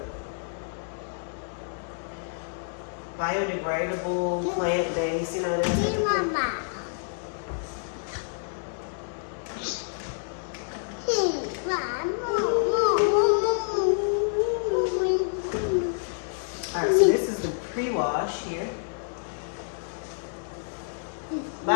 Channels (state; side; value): silent; right; digital silence